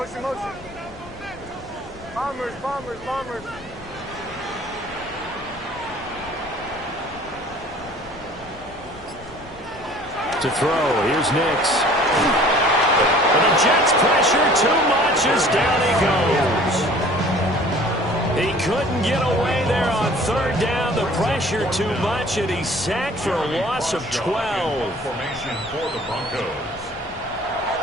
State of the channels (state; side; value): noise; left; rumble, 20 dB below the sound